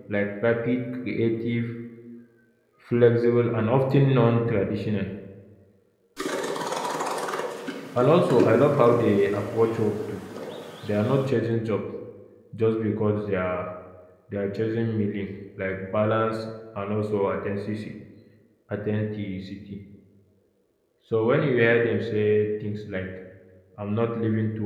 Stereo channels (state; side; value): identical; both; correlation 1.00